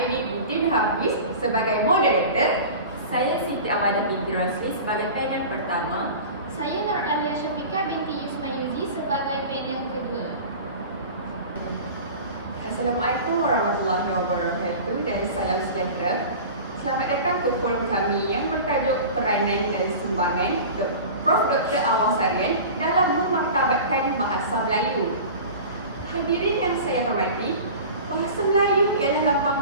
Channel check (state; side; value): inverted; both; correlation -0.36